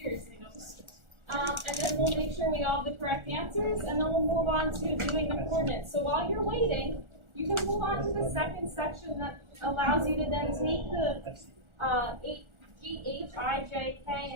Seriously, no pressure. And then we'll make sure we all have the correct answers, and then we'll move on to doing the coordinates. So while you're waiting, you can move on to the second section that allows you to then take the, G, H, I, J,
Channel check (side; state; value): left; late; 1.4 ms